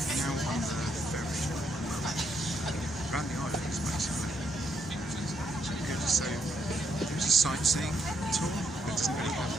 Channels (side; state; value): both; normal; correlation 0.76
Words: ferry around the islands, basically. So there's a sightseeing tour, but it doesn't really